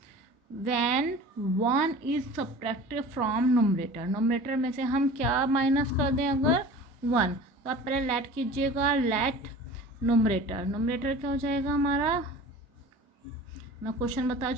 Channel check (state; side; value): normal; both; correlation 0.40